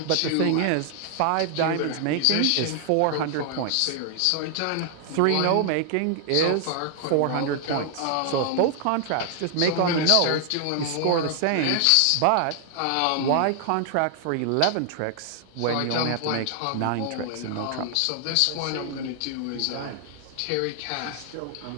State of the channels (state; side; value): different; both; correlation 0.00